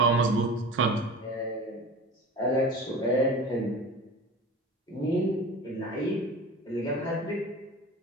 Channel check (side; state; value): both; normal; correlation 0.35